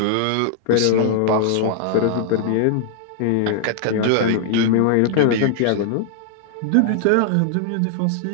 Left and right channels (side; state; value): both; different; correlation 0.00